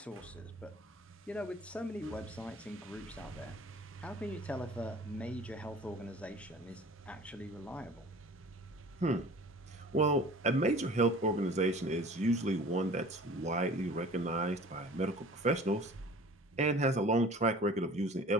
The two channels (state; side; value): normal; both; correlation 0.44